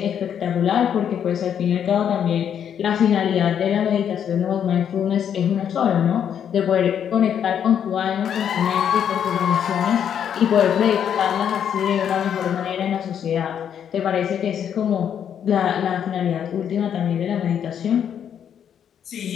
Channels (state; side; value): quieter; right; 8.7 dB